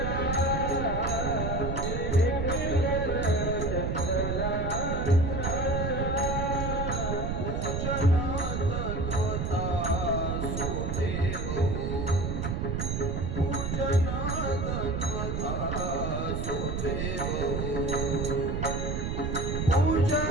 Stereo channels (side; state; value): right; noise; rumble, 1 dB below the sound